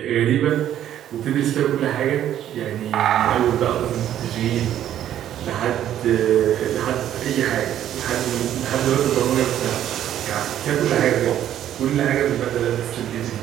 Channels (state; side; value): quieter; left; 11.2 dB